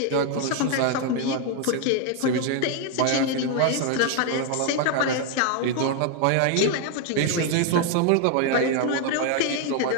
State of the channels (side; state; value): both; different; correlation 0.00